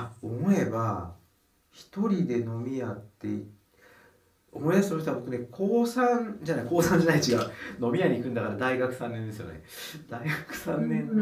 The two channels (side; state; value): both; identical; correlation 1.00